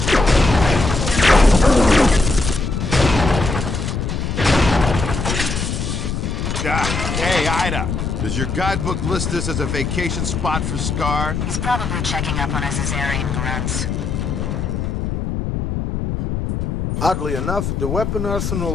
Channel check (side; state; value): left; noise; rumble, 2 dB below the sound